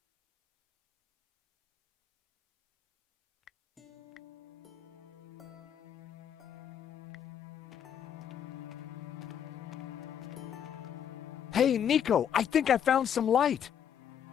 Hey, Nico, I think I found some light.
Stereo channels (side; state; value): right; quieter; 8.9 dB